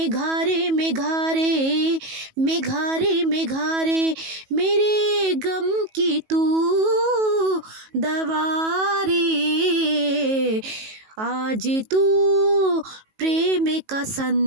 मेघारे, मेघारे मेघारे, मेरे गम की तू दवा रे। आज तू प्रेम का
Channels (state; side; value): late; left; 19 ms